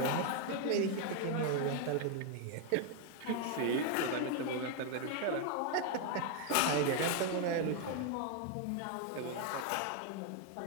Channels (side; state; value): both; different; correlation 0.00